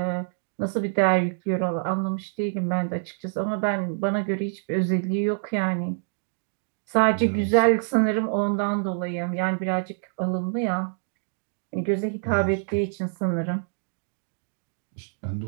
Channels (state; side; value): silent; left; digital silence